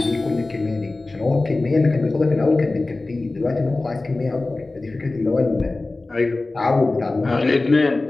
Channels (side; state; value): right; quieter; 3.2 dB